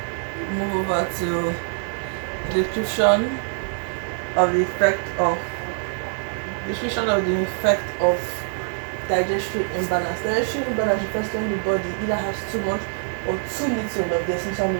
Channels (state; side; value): silent; left; digital silence